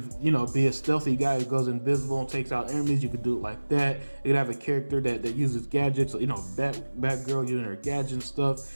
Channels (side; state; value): both; inverted; correlation -1.00